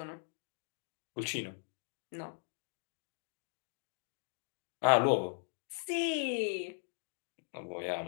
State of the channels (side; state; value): right; silent; digital silence